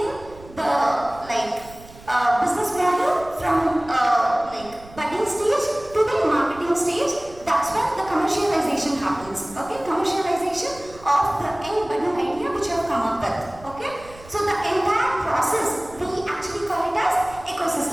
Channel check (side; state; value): right; noise; rumble, 20 dB below the sound